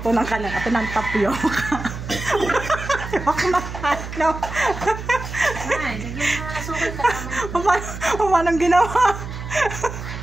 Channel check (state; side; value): noise; right; hum, 9 dB below the sound